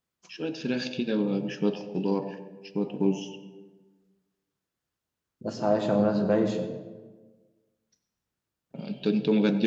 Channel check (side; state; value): both; identical; correlation 1.00